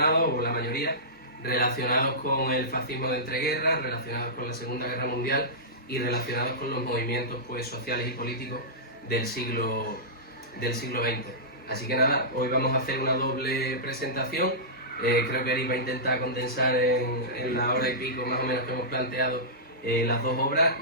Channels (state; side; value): normal; both; correlation -0.17